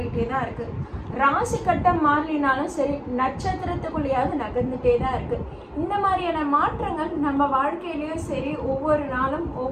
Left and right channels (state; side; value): identical; both; correlation 1.00